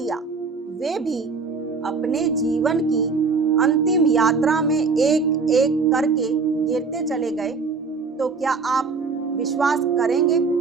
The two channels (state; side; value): quieter; left; 4.6 dB